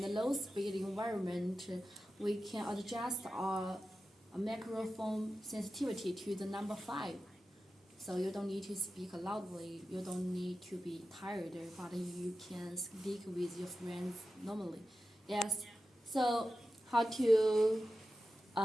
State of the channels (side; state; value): both; normal; correlation 0.93